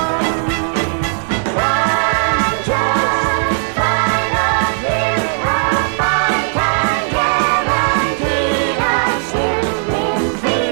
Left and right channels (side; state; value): left; silent; digital silence